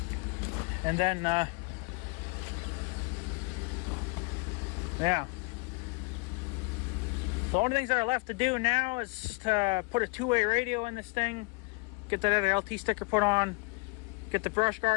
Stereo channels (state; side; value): quieter; right; 28.7 dB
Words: And then, yeah. So the only things that are left to do now is to put a two-way radio in this thing, get that other LT sticker put on, get the brush